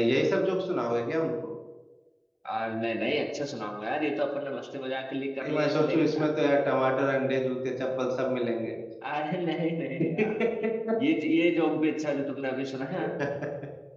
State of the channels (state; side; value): identical; both; correlation 1.00